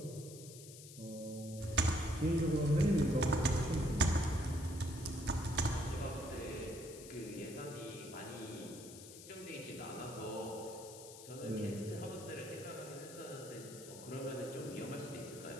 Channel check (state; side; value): noise; left; hiss, 15 dB below the sound